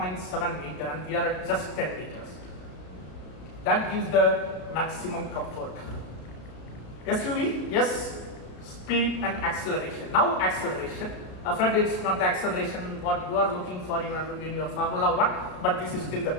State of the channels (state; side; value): late; right; 33 ms